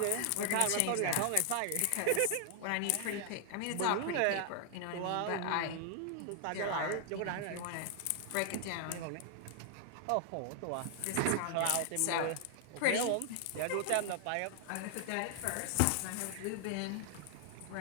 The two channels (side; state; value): both; different; correlation 0.00